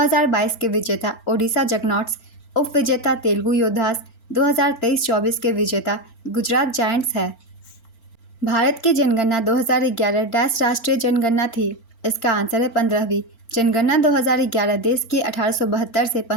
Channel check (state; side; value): late; right; 4.4 ms